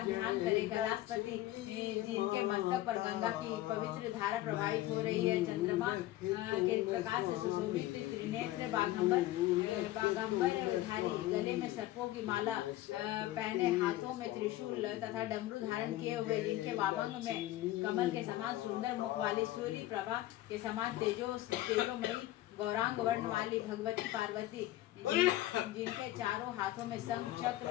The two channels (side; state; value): right; quieter; 15.7 dB